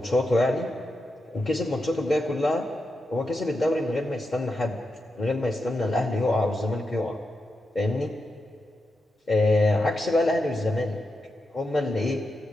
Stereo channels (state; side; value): normal; both; correlation 0.87